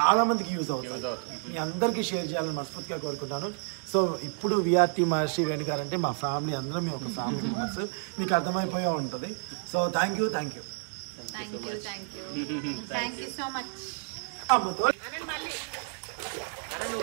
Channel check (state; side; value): silent; left; digital silence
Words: మందికి యూజ్ అవుతుంది. మీ అందరికీ షేర్ చేయాలని మనస్ఫూర్తిగా కోరుకుంటాను. సో ఇప్పుడు విఆర్టీ మహర్షి వేణు గారు అంటే మా ఫ్యామిలీ, అందరం మేము ఒక ఫ్యామిలీ మెంబర్స్. మీకు అర్థమైపోయే ఉంటుంది. So thank you so much. అమ్మతో నువ్వు